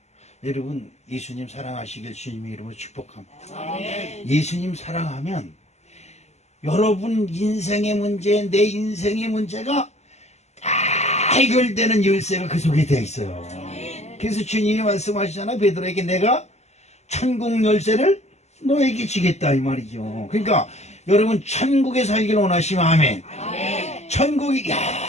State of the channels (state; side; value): late; right; 0.32 ms